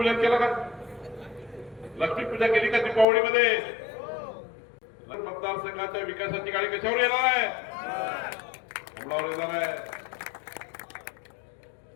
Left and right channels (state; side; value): drops out; right; at 3.1 s